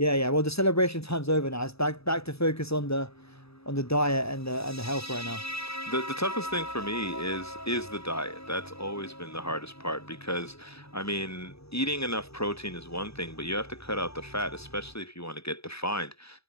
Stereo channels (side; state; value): right; late; 0.78 ms